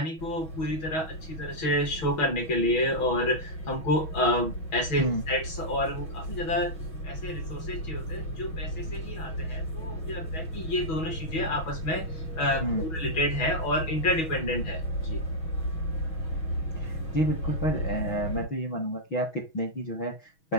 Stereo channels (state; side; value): late; right; 6.2 ms